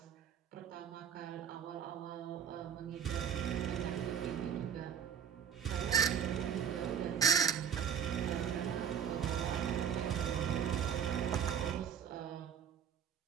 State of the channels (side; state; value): left; quieter; 8.2 dB